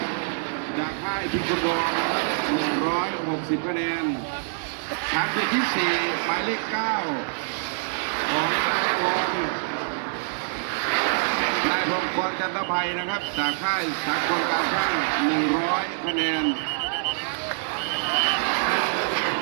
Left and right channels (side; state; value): left; silent; 61 dB below the other